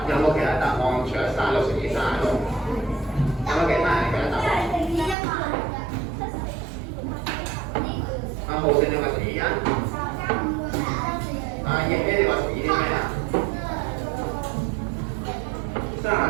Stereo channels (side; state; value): left; drops out; at 5.2 s